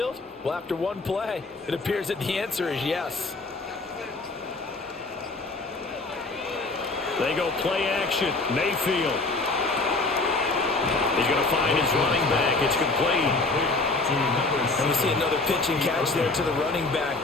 Well, after one play, it appears that the answer is yes. They go play action. Mayfield. He's going to find his running back. It's complete. And we see another pitch and catch there to the running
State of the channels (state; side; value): quieter; right; 3.4 dB